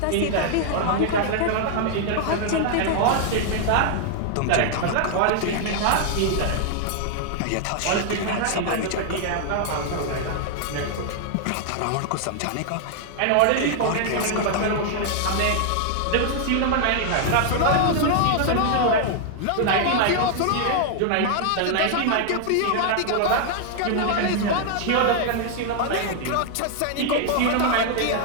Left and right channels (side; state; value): both; different; correlation 0.00